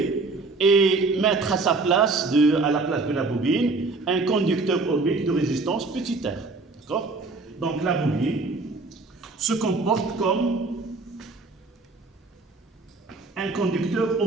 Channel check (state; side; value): quieter; left; 3.7 dB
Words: et mettre à sa place, à la place de la bobine, un conducteur ohmique de résistance petit r. D'accord? Donc la bobine se comporte comme un conducteur